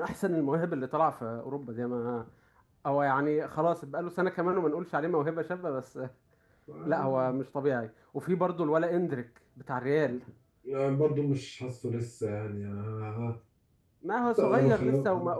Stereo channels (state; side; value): identical; both; correlation 1.00